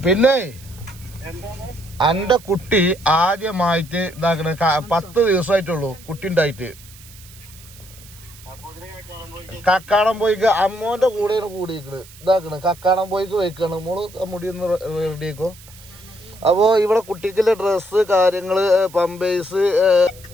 പിന്നെ എന്റെ കുട്ടി ആദ്യമായിട്ട് ഇതാക്കണ 10 ദിവസമായിട്ടുള്ളൂ കുട്ടി ഉണ്ടായിട്ട്. കക്കാടം പോയിക്ക് അമ്മോന്റെ കൂടെയാണ് കൂടിയിരിക്കണ്. ഇതാക്കണ് കക്കാടം പോയിക്ക് വെക്കാണ്. മോള് മുടി ഒന്ന് റെഡിയാക്കോ. അപ്പോ ഇവിടെ കുട്ടിക്കുള്ള ഡ്രസ്സ് കാര്യങ്ങള് പമ്പേഴ്സ്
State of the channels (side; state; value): right; noise; hiss, 21 dB below the sound